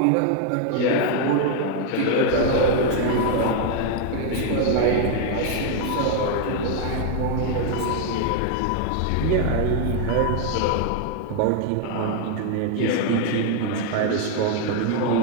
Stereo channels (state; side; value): different; both; correlation 0.00